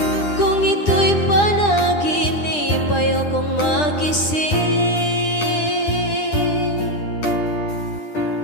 Kung ito'y panaginip, ayokong magising.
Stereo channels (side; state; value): right; late; 9.9 ms